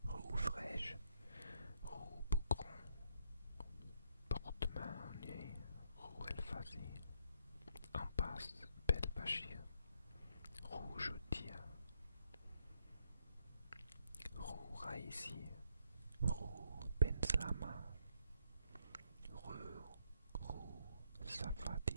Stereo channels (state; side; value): inverted; both; correlation -0.73